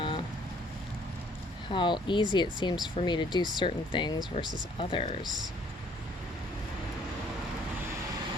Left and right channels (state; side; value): normal; both; correlation 0.60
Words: how easy it seems for me to do certain things versus others.